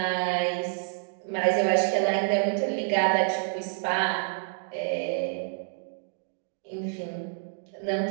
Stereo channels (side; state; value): left; silent; digital silence